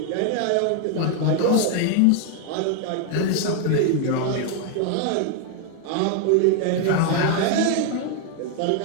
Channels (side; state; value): both; different; correlation 0.00